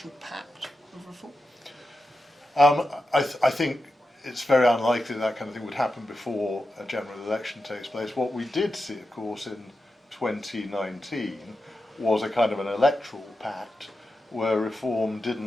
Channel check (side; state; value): both; normal; correlation 0.90